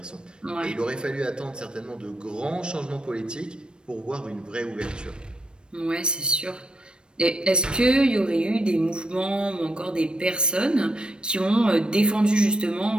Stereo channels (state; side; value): late; left; 0.053 ms